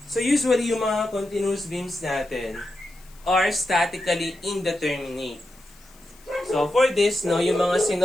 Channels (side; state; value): left; noise; hiss, 27 dB below the sound